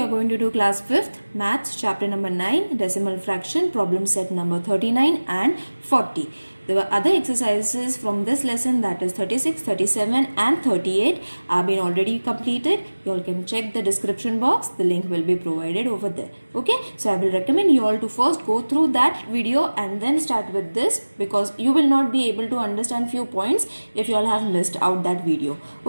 going to do class 5th maths chapter number 9 decimal fraction problem set number 39 and 40. The other exercises from this lesson, that is 36, 37 and 38, have been already completed. You all can check the description box, the link will be provided over there. Okay, so I will recommend you all to first go through that video and then start with this, because you will not be able to understand few points if you all have missed out that video.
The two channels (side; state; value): both; inverted; correlation -1.00